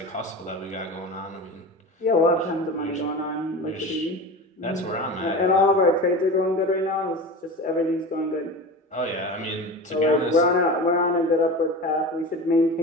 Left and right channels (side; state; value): both; normal; correlation 0.30